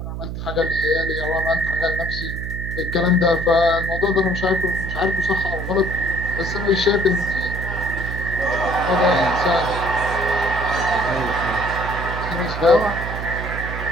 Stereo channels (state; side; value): noise; right; hum, 6 dB below the sound